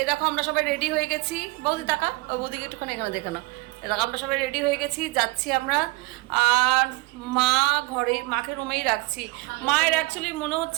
দেখো আমরা সবাই রেডি হয়ে গেছি। বৌদি টাকা, ও বৌদিকে একটুখানি এখানে দেখে নাও। এ দেখো আমরা সবাই রেডি হয়ে গেছি, যাচ্ছি আমরা। আর মা ঘরে, মাকে রুমেই রাখছি। মায়ের অ্যাকচুয়ালি মনে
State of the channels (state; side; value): quieter; left; 24.0 dB